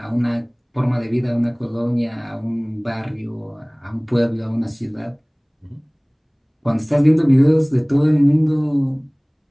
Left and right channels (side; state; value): both; identical; correlation 1.00